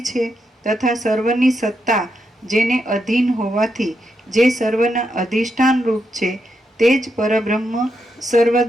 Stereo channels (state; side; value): normal; both; correlation 0.82